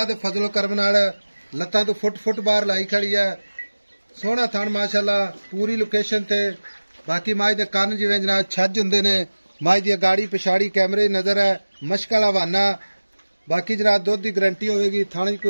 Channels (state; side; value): inverted; both; correlation -1.00